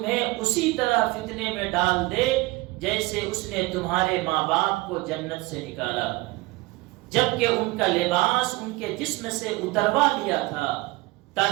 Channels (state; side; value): quieter; left; 21.8 dB